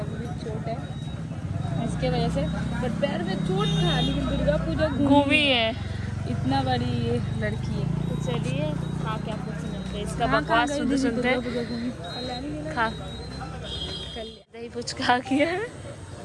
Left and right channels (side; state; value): both; identical; correlation 1.00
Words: भी चोट है इसके वजह से। पर पैर में चोट था लेकिन दुर्गा पूजा घूमी है। इतना बड़ी ये लड़की है। तो चलिए खा के आप लोग से मिलते हैं। इसका बकवास सुनते खा दही पुचका किया है,